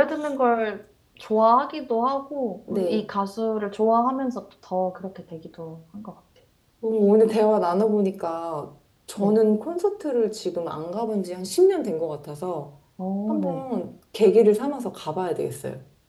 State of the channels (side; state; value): both; identical; correlation 1.00